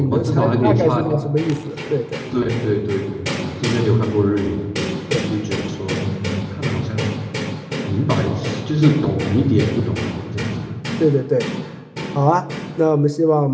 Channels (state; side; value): identical; both; correlation 1.00